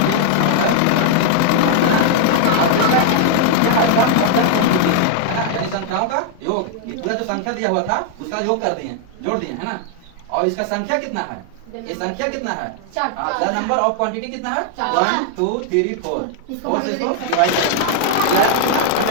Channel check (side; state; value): both; different; correlation 0.00